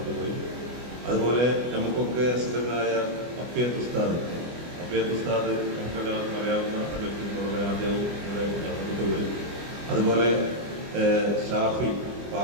പോയി. അതുപോലെ നമുക്കൊക്കെ സുഖനായ അഫിയത്ത് ഉസ്താദ് നമുക്കെല്ലാവർക്കും അറിയാവുന്ന വ്യക്തിത്വമുള്ള ആദ്യവും ഇവിടെ മരണപ്പെട്ടു പോയി. അതുപോലെ ഷാഫി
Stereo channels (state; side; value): late; left; 24 ms